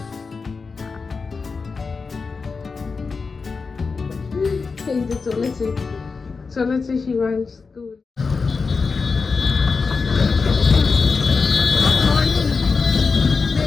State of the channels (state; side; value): quieter; right; 4.7 dB